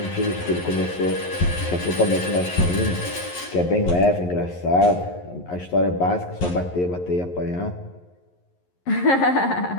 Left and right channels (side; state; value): right; late; 11 ms